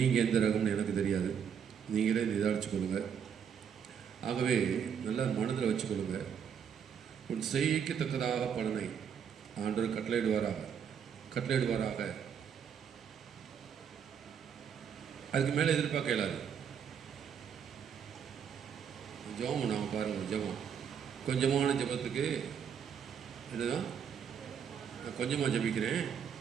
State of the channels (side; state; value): left; quieter; 7.7 dB